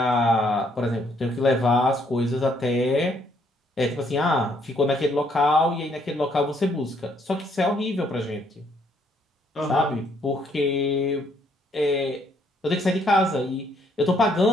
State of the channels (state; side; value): normal; both; correlation 0.69